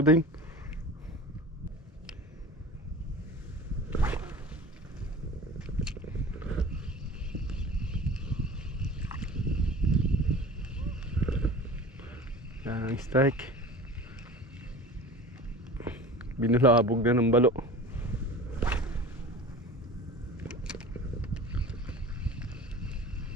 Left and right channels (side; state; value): both; normal; correlation 0.38